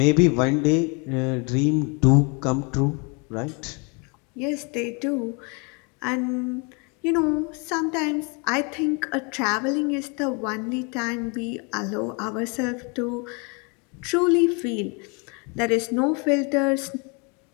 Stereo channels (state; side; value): quieter; right; 33.0 dB